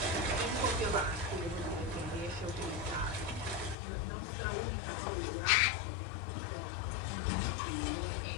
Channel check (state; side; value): drops out; right; at 3.8 s